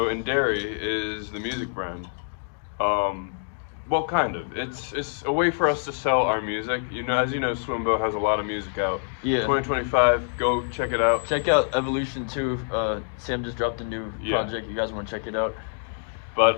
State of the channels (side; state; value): right; silent; digital silence